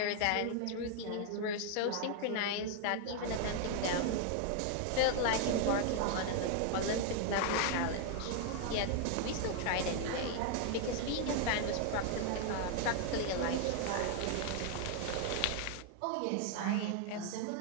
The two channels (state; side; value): different; both; correlation 0.00